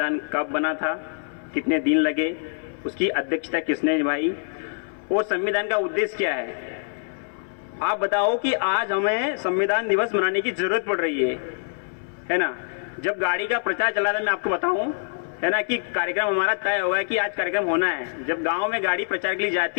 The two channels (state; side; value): silent; right; 58 dB below the other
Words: कब बना था, कितने दिन लगे, उसकी अध्यक्षता किसने निभाई और संविधान का उद्देश्य क्या है। आप बताओ कि आज हमें संविधान दिवस मनाने की जरूरत पड़ रही है ना। जब गाड़ी का प्रचार चला था, मैं आपको बताऊं, है ना, कि कार्यक्रम हमारा तय होगा कि आज कार्यक्रम होना है। जब गांव में गाड़ी प्रचार के लिए